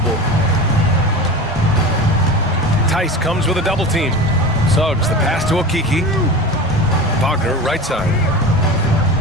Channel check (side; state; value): both; normal; correlation 0.30